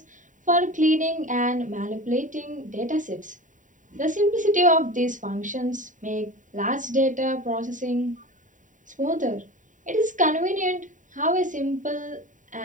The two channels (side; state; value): left; late; 0.37 ms